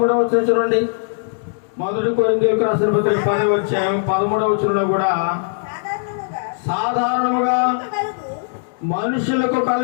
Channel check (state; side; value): silent; right; digital silence